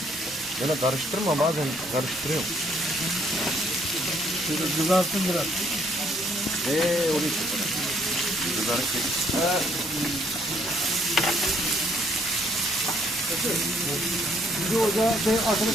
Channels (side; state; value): both; normal; correlation 0.67